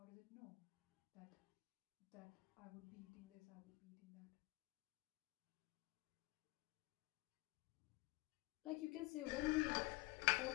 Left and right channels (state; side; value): quieter; right; 23.3 dB